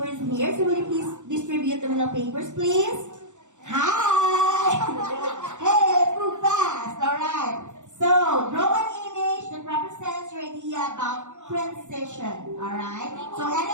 here. So will you please distribute the Manila papers, please? Hi! Hey, let's move fast. All right. So draw an image that represents your idea about transition. All right. So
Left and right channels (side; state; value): left; late; 0.85 ms